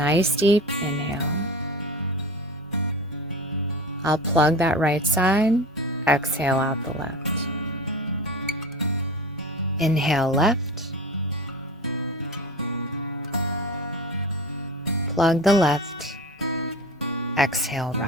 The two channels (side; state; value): both; normal; correlation 0.32